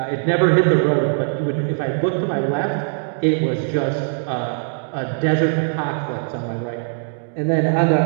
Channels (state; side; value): silent; left; digital silence